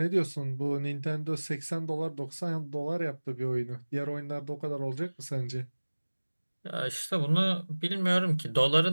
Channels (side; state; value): both; inverted; correlation -1.00